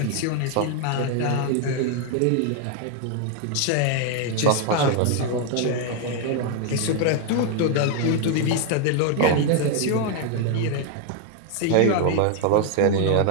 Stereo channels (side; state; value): both; different; correlation 0.00